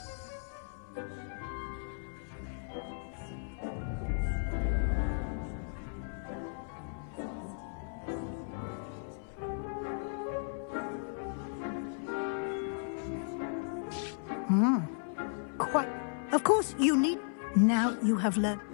Quite. Of course, you need... Now you have learned...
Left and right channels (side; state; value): right; silent; 54 dB below the other